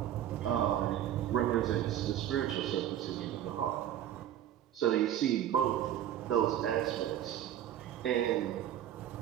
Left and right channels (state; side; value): quieter; left; 11.2 dB